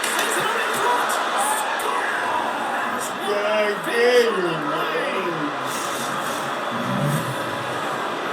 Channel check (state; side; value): identical; both; correlation 1.00